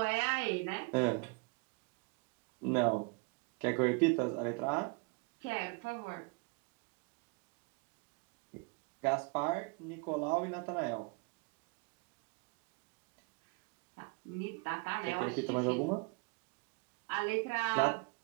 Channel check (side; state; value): left; quieter; 30.3 dB